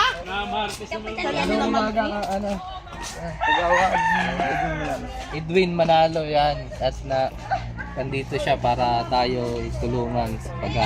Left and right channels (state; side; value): identical; both; correlation 1.00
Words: Ano umaga ka, ano? Edwin Manalo yan. At na nandito siya para tayo tulungan sa